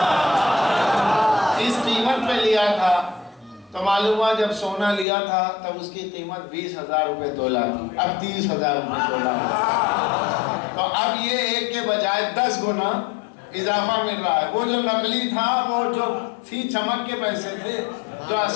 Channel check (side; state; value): right; drops out; at 5.1 s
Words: اس قیمت پہ لیا تھا۔ تو معلوم ہوا جب سونا لیا تھا تب اس کی قیمت 20,000 روپے تولہ تھی، اب 30,000 روپے تولہ ہے، تو اب یہ ایک کے بجائے 10 گنا اضافہ مل رہا ہے۔ وہ جو نقلی تھا وہ جو تھی چمک کے پیسے تھے، جو